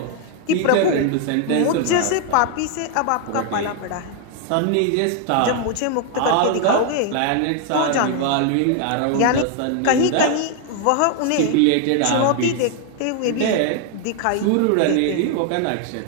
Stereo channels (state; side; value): different; both; correlation 0.00